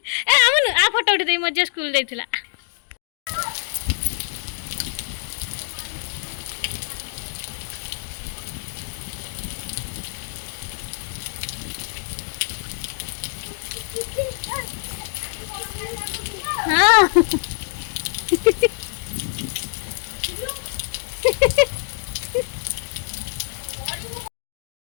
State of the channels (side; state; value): right; silent; digital silence